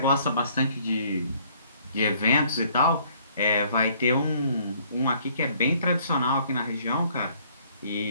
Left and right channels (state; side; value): inverted; both; correlation -0.61